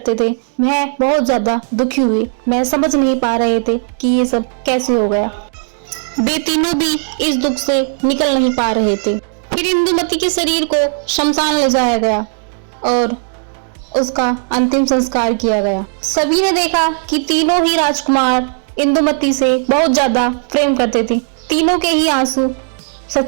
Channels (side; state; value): left; silent; digital silence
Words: थे वह बहुत ज्यादा दुखी हुए। वह समझ नहीं पा रहे थे कि ये सब कैसे हो गया। वे तीनों भी इस दुख से निकल नहीं पा रहे थे। फिर इंदुमती के शरीर को शमशान ले जाया गया और उसका अंतिम संस्कार किया गया। सभी ने देखा कि तीनों ही राजकुमार इंदुमती से बहुत ज्यादा प्रेम करते थे। तीनों के ही आंसू